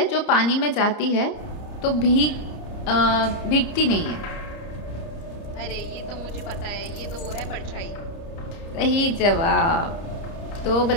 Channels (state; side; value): late; right; 30 ms